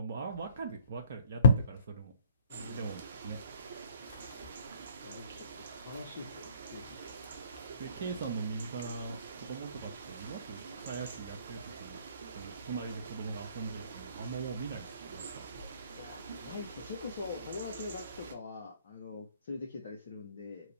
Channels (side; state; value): both; inverted; correlation -0.57